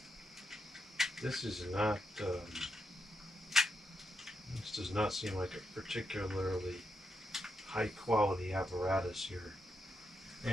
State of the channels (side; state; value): both; normal; correlation 0.83